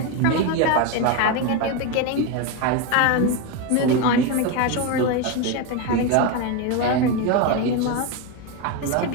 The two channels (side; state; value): both; different; correlation 0.03